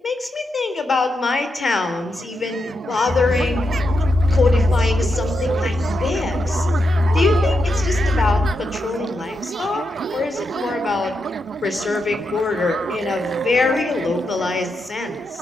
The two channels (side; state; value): both; normal; correlation 0.84